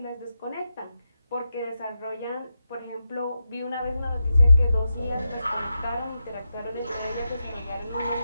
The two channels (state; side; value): inverted; both; correlation -0.88